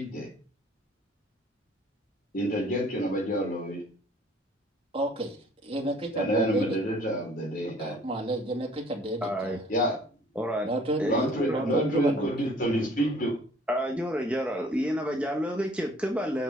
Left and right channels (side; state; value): both; normal; correlation 0.55